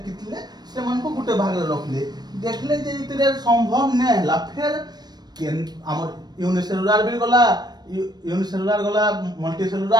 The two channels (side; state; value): left; late; 0.20 ms